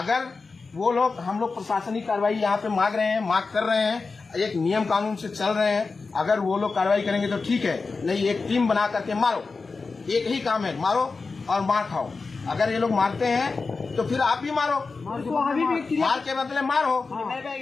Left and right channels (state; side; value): quieter; right; 4.2 dB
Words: वो लोग, हम लोग प्रशासनिक कार्रवाई यहाँ पे मांग कर रहे हैं, एक नियम कानून से चल रहे हैं, अगर वो लोग कार्रवाई करेंगे तो ठीक है, नहीं एक टीम बना करके मारो, एक ही काम है, मारो और मार खाओ। अगर ये लोग मारते हैं तो फिर आप भी मारो, मार के बदले मारो।